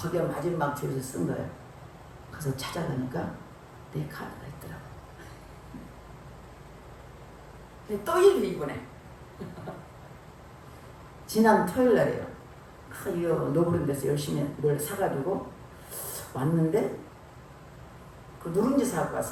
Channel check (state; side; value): identical; both; correlation 1.00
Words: 마지막 줄에서 쓴 거예요. 그래서 찾아가니까 내 카드가 있더라고. 근데 또 일을 이번에 지난 토요일 날이에요. 노브른 데서 열심히 뭘 사가지고 왔는데 그 누룽지 사갖고